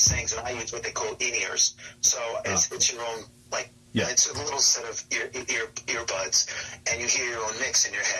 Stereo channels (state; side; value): identical; both; correlation 1.00